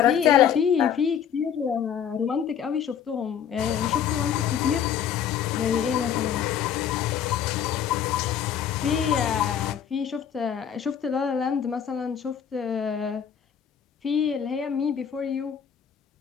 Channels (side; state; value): right; quieter; 8.5 dB